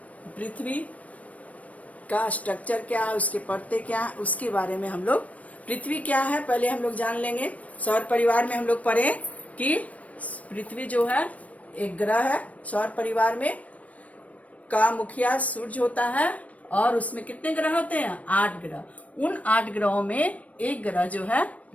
पृथ्वी का स्ट्रक्चर क्या है, उसके परतें क्या है, उसके बारे में हम लोग। पृथ्वी क्या है पहले हम लोग जान लेंगे। सौर परिवार में हम लोग पढ़े कि पृथ्वी जो है एक ग्रह है। सौर परिवार में का मुखिया सूर्य होता है और उसमें कितने ग्रह होते हैं? 8 ग्रह। उन 8 ग्रहों में एक ग्रह जो है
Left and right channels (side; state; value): right; late; 0.067 ms